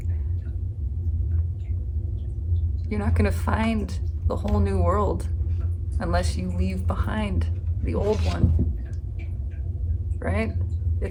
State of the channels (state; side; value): identical; both; correlation 1.00